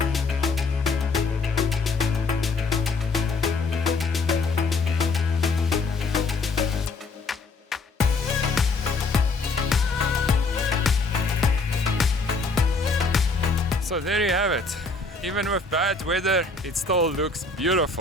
So there you have it. Even with bad weather, it still looks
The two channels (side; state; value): right; quieter; 3.6 dB